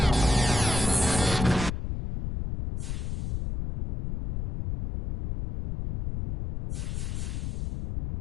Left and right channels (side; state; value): left; noise; rumble, 4 dB below the sound